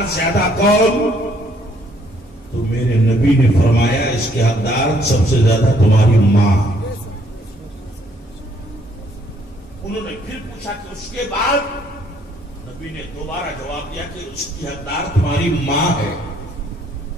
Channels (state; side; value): normal; both; correlation 0.66